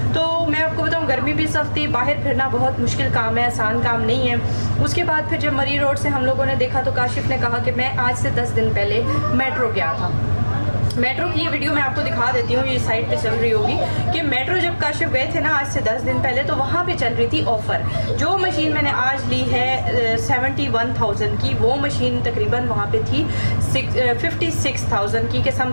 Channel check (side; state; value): both; inverted; correlation -1.00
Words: तो मैं आपको बताऊँ गर्मी भी सख्त थी, बाहर फिरना बहुत मुश्किल काम है, आसान काम नहीं है। उसके बाद फिर जब मरी रोड से हम लोगों ने देखा तो काशिफ ने कहा कि मैं आज से 10 दिन पहले मेट्रो गया था। मेट्रो की ये वीडियो मैं आपको दिखा देती हूँ, ये साइट पे चल रही होगी कि मेट्रो जब काशिफ गए थे ना आज से 10 दिन पहले, तो वहाँ पे चल रही थी ऑफ़र। जो मशीन मैंने आज ली है 71,000 की, वो मशीन तकरीबन वहाँ पे थी 56,000 की के